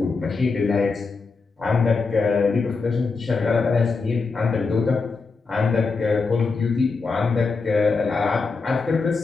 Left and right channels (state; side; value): quieter; right; 4.4 dB